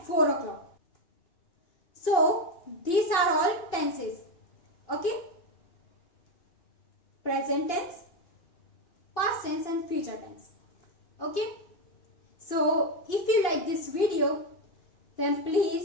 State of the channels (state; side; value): late; right; 2.8 ms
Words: 4 o'clock. So these are all tenses. Okay, present tense, past tense and future tense. Okay, so if you like this video, then